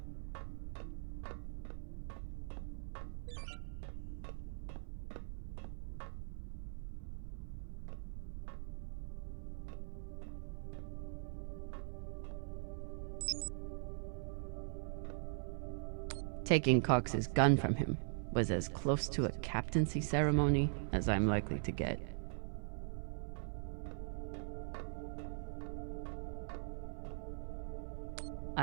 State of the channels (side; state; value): left; silent; 50 dB below the other